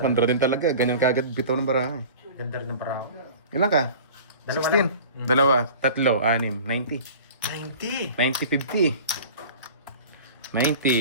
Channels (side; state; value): both; inverted; correlation -0.40